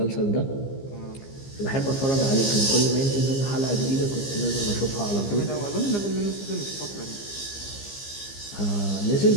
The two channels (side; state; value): right; late; 15 ms